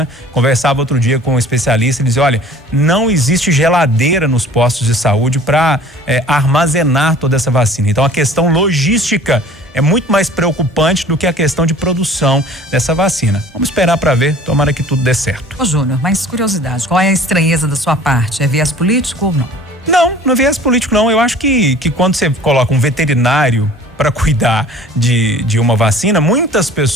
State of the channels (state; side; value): normal; both; correlation 0.48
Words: Conversava outro dia com um especialista, ele dizia, olha, não existe geladeira nos postos de saúde para armazenar toda essa vacina. Então a questão logística é muito mais preocupante do que a questão de produção dessa vacina. Vamos esperar para ver, tomara que tudo dê certo. Ô Júnior, mais curiosidade, qual é a estranheza da sua parte? É viés político ou não? Não é viés político não, eu acho que quando você coloca um veterinário para cuidar de uma vacina, muitas